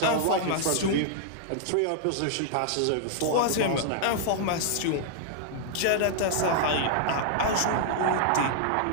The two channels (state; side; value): different; both; correlation -0.01